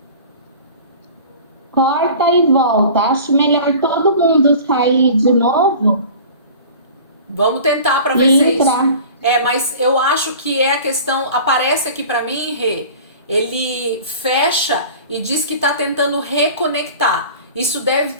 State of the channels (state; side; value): inverted; both; correlation -0.41